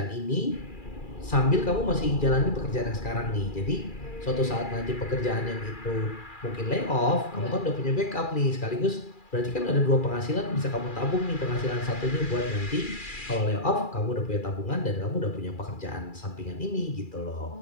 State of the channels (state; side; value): late; right; 2.4 ms